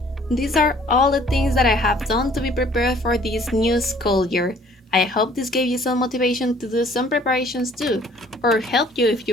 These are all the things that I have done to be prepared for this new school year. I hope this gave you some motivation to do some preparations too, or help you if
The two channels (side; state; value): both; normal; correlation 0.56